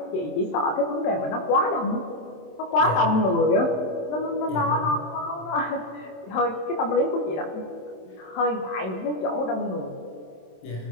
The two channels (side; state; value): right; late; 27 ms